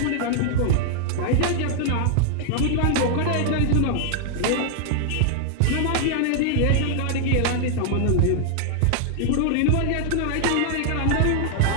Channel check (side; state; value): both; different; correlation 0.00